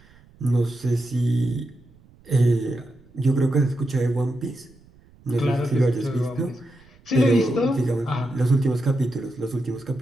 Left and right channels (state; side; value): noise; right; rumble, 27 dB below the sound